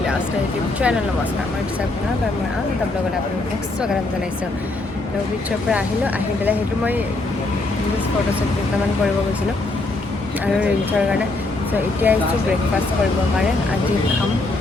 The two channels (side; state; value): right; quieter; 3.1 dB